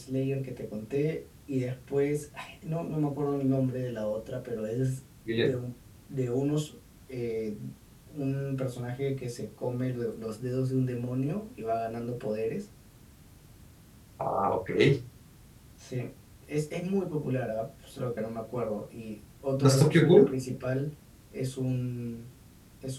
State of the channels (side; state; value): both; identical; correlation 1.00